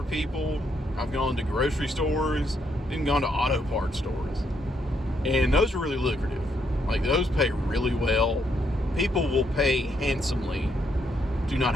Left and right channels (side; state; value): both; normal; correlation 0.76